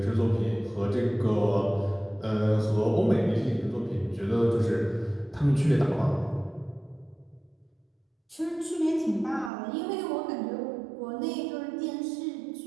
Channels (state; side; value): drops out; left; at 9.5 s